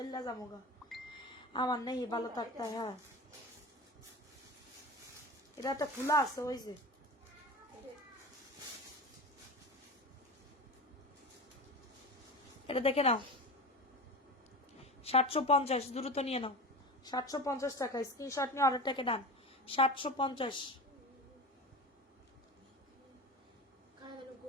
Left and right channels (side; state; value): both; normal; correlation 0.29